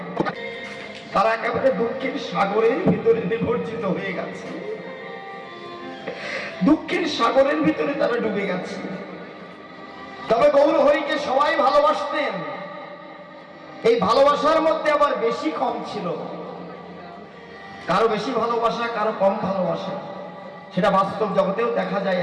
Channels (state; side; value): identical; both; correlation 1.00